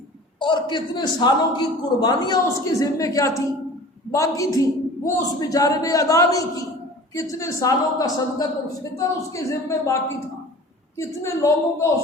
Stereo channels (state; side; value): normal; both; correlation 0.42